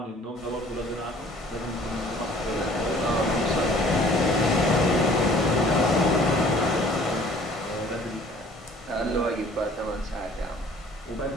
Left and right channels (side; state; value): both; normal; correlation 0.53